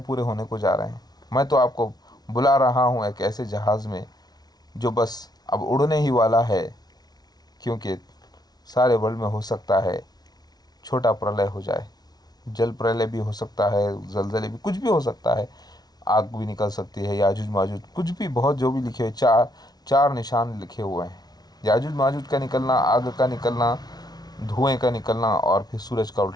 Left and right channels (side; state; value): right; late; 0.19 ms